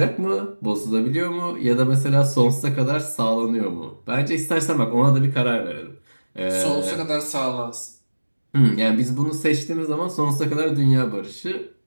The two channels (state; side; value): inverted; both; correlation -1.00